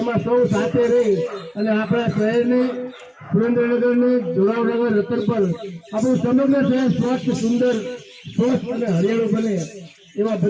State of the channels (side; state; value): both; identical; correlation 1.00